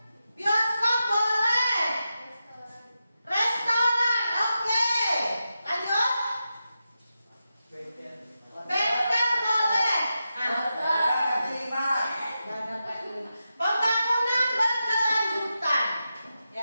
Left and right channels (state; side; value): inverted; both; correlation -0.90